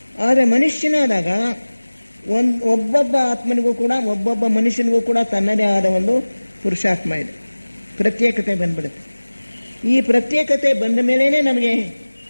ಆದರೆ ಮನುಷ್ಯನಾದಾಗ ಒಬ್ಬೊಬ್ಬ ಆತ್ಮನಿಗೂ ಕೂಡ, ಒಬ್ಬೊಬ್ಬ ಮನುಷ್ಯನಿಗೂ ಕೂಡ ತನ್ನದೇ ಆದ ಪುರುಷಾತ್ಮ ಇದೆ. ಪ್ರತ್ಯೇಕತೆ ಬಂದ್ಬಿಡುತ್ತೆ. ಈ ಪ್ರತ್ಯೇಕತೆ ಬಂದ ಮೇಲೇ ನಮಗೆ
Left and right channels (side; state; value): both; inverted; correlation -1.00